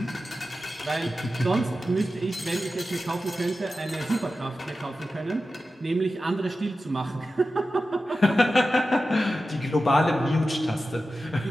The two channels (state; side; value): normal; both; correlation 0.93